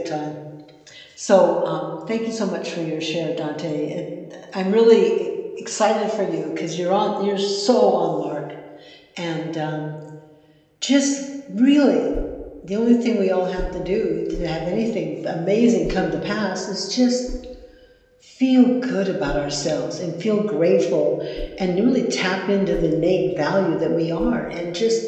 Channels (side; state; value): both; identical; correlation 1.00